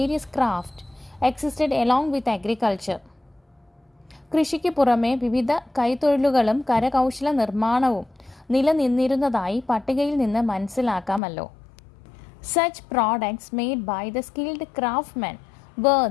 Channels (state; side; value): drops out; right; at 11.2 s